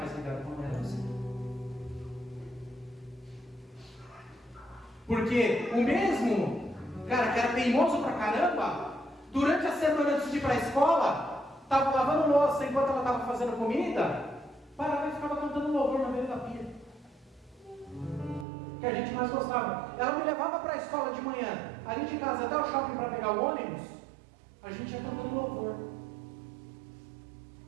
ligado com ela assim. Porque o mesmo cara que era teimoso pra caramba, durante a semana antes de ir para a escola, estava lavando louça enquanto ela estava fazendo comida, parava e ficava cantando louvor na beira da pia. Que a gente mais gostava. Ela me levava para a escola de manhã, ali de casa até o shopping para pegar o ônibus, a gente ia cantando louvor.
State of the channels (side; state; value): left; drops out; at 18.4 s